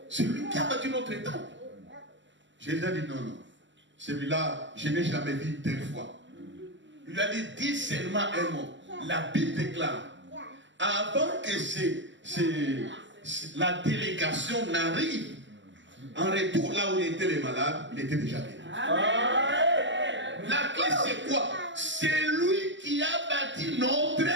c'est lui qui a bâti notre temple. Jésus a dit non, non. Celui-là, je n'ai jamais vu une telle fois. Il lui a dit, dis seulement un mot. La Bible déclare, avant que la délégation n'arrive, en retour là où étaient les malades, il était déjà guéri. La clé c'est quoi? C'est lui qui a bâti notre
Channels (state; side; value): late; left; 0.54 ms